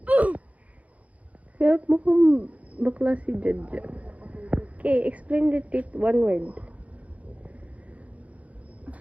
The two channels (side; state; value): left; late; 0.067 ms